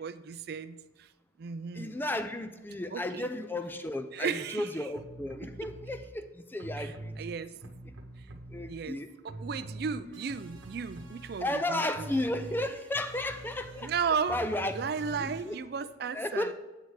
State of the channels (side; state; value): both; normal; correlation 0.40